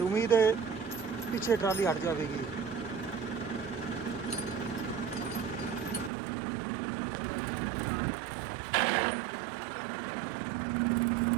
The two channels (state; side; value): drops out; left; at 6.1 s